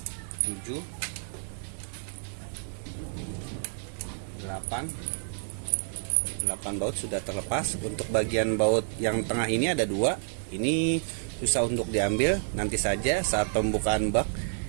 8 baut sudah terlepas. Untuk bagian baut yang tengah ini ada 2. Ini susah untuk diambil. Nanti saja saat pembukaan bak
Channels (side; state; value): left; silent; digital silence